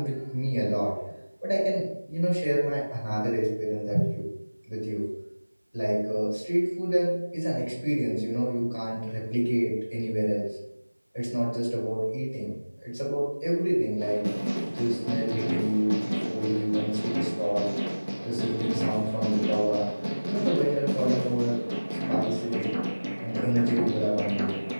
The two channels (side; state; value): both; inverted; correlation -1.00